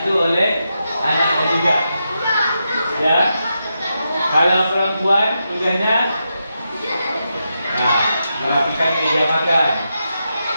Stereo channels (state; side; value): inverted; both; correlation -0.86